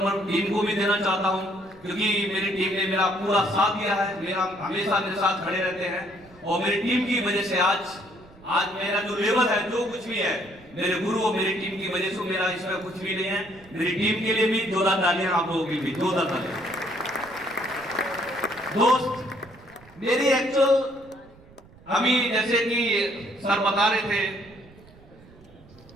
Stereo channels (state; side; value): noise; right; rumble, 24 dB below the sound